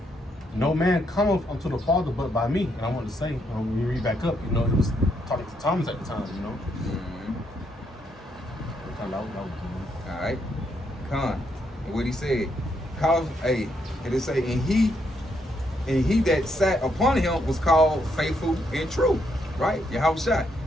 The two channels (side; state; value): both; normal; correlation 0.76